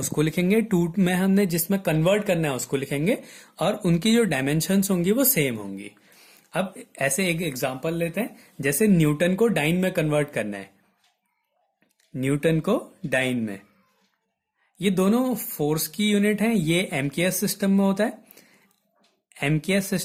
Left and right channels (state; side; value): identical; both; correlation 1.00